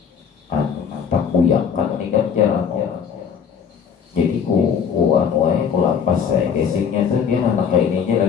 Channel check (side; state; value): right; quieter; 7.2 dB